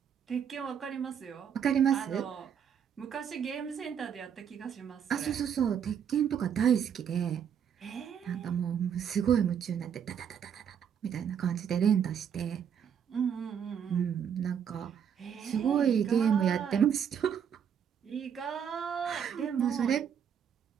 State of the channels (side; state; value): left; quieter; 8.1 dB